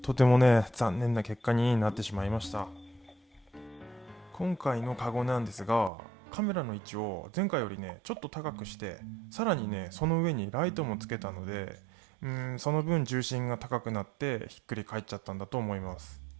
てもね残念な結果になってしまいました。今回のカゴなんですが、カメラの位置を前回よりねちょっと高くして、さらにねその上にライトもつけたので、その分重心が高くなってひっくり返っちゃったんだと思います。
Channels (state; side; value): drops out; left; at 5.9 s